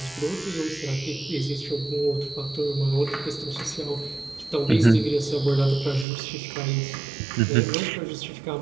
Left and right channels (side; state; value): left; drops out; at 6.1 s